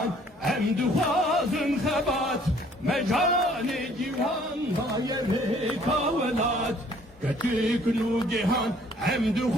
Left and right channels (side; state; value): both; normal; correlation 0.59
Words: hem duhazın hebat, Mecani civan hayeri kavelat. Küçük Nugihan hem